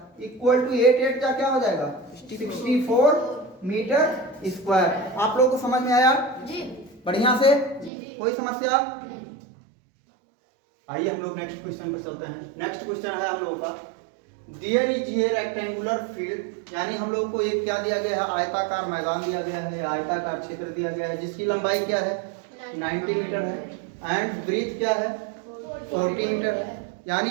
इक्वल टू 8 का क्या हो जाएगा, 64 मीटर स्क्वायर। आप लोगों को समझ में आया जी, बढ़िया से जी। कोई समस्या? आइए हम लोग नेक्स्ट क्वेश्चन पर चलते हैं। नेक्स्ट क्वेश्चन है हम लोगों का, there is a rectangular field, यानी हम लोगों को एक क्या दिया गया है, आयताकार मैदान दिया गया है, आयताकार क्षेत्र दिया गया है, जिसकी लंबाई क्या है, 90 मीटर है, एंड ब्रीथ क्या है, 40 मीटर है। यानी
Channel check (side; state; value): left; drops out; at 7.9 s